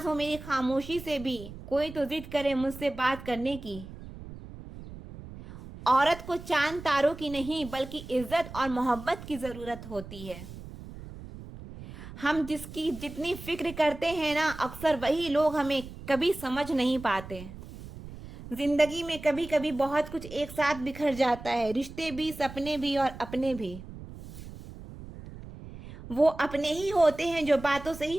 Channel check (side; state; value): right; noise; rumble, 14 dB below the sound